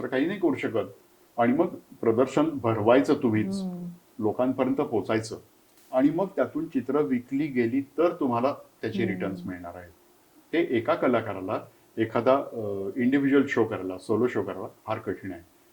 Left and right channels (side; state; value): both; identical; correlation 1.00